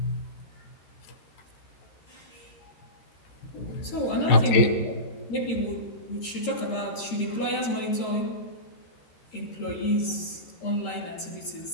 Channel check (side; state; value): right; late; 13 ms